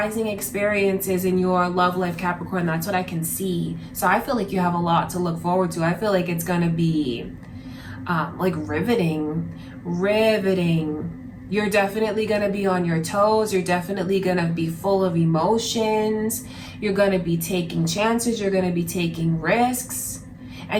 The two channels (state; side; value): identical; both; correlation 1.00